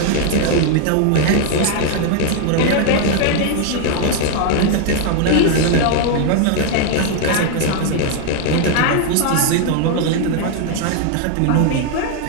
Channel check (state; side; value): different; both; correlation 0.00